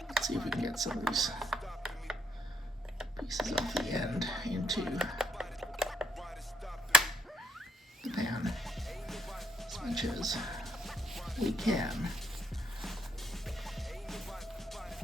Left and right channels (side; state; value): both; normal; correlation 0.71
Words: Let's see if we can get some of these pieces off the end into the pan as much as we can.